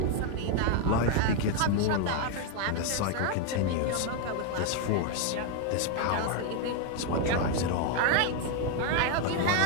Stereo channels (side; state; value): both; different; correlation 0.01